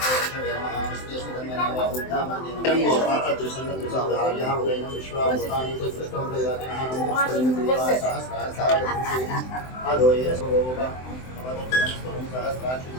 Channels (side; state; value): right; late; 23 ms